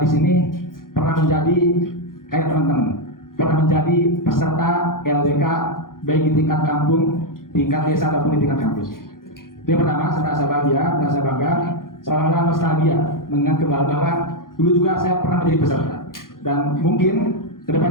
sini pernah menjadi kayak teman-teman, pernah menjadi peserta LDK baik di tingkat kampung, tingkat desa ataupun di tingkat kampus. Itu yang pertama, saya merasa bahagia, merasa bangga, seolah-olah nostalgia mengingat kembali bahwa dulu juga saya pernah menjadi peserta. Dan mungkin ke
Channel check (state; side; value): late; right; 0.91 ms